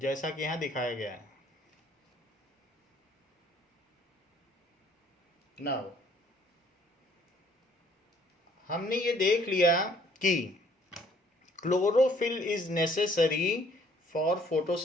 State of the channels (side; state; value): both; normal; correlation 0.61